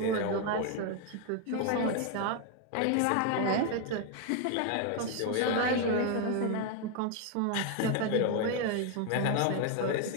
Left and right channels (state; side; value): different; both; correlation 0.01